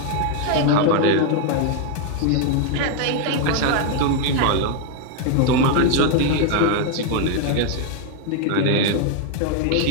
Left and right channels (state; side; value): different; both; correlation 0.00